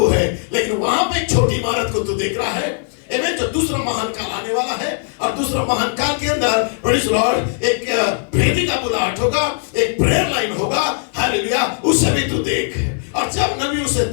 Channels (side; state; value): right; silent; 67 dB below the other